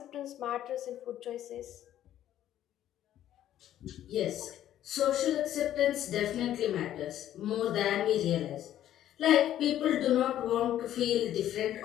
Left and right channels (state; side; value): quieter; right; 12.0 dB